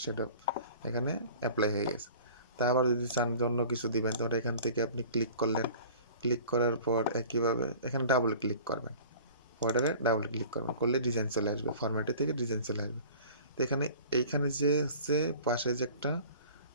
শ্যাডো এখানে অ্যাপ্লাই হয়ে গেছে। তা আবার যদি চান অন্য কিছু দিবেন তাহলে এখান থেকে আপনি ক্লিক করলেন, ক্লিক করার পর একইভাবে এখানে ডাবল ক্লিক করবেন, বর্ডারে ডাবল ক্লিক করবেন, করলে ডিজাইন চলে আসবে, ফরম্যাটে থেকে ডিজাইন চলে আসবে। তো এইখানে যে হচ্ছে পাশে যে একটা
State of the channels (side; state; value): both; inverted; correlation -0.44